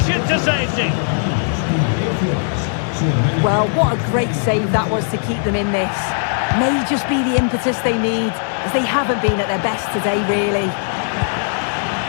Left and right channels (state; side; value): silent; right; 63 dB below the other